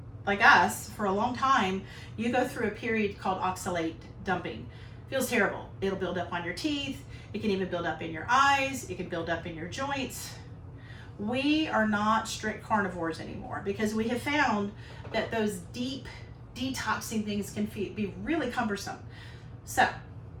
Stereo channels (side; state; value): both; identical; correlation 1.00